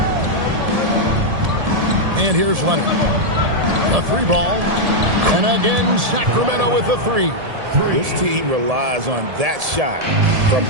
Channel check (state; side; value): late; left; 1.7 ms